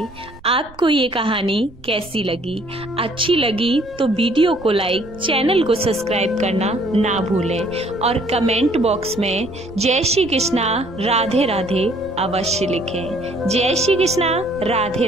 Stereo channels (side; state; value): right; noise; rumble, 22 dB below the sound